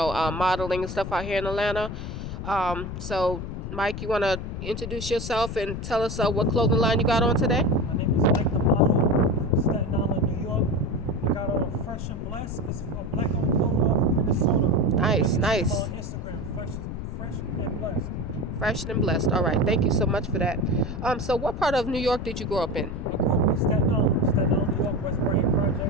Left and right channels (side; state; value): left; noise; rumble, 7 dB below the sound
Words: and stuff out here in Atlanta. So, Mike, you want to introduce yourself and tell us what clothing line you got on today? My name is Mike the Model from Staten Island, New York. I got on Fresh and Blessed. It's a black owned clothing line from Minnesota. Nice. On Instagram, Fresh and Blessed. Fresh and blessed. All right. Thank you so much for that. So what part of New York did you grow up in? I grew up in Staten Island, New York, West Brain